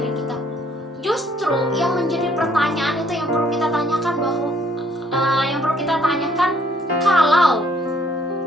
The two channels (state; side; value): normal; both; correlation 0.64